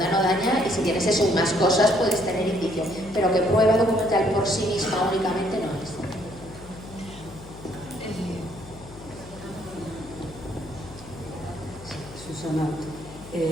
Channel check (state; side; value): noise; left; hum, 17 dB below the sound